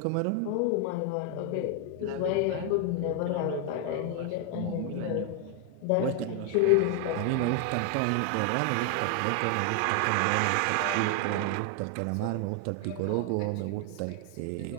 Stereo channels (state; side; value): different; both; correlation 0.00